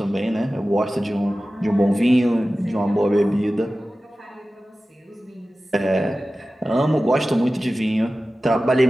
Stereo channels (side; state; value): both; normal; correlation 0.96